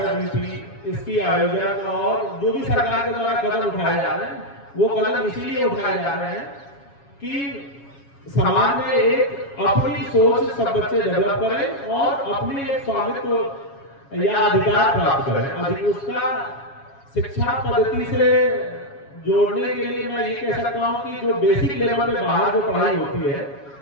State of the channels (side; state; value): right; late; 7.3 ms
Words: यूपी, इसकी आयोजन और जो भी सरकार के द्वारा कदम उठाए जा रहे हैं, वो कदम इसीलिए उठाए जा रहे हैं कि समाज में एक अपनी सोच सब बच्चे डेवलप करें और अपनी एक स्वामित्व या अधिकार प्राप्त करें। उसका शिक्षा पद्धति से जोड़ने के लिए मैं ये कह सकता हूँ कि जो बेसिक लेवल पे बाहर जो पढ़ाई होती है,